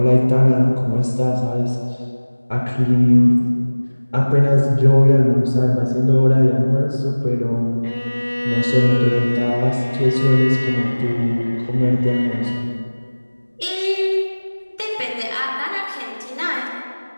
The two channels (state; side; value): inverted; both; correlation -1.00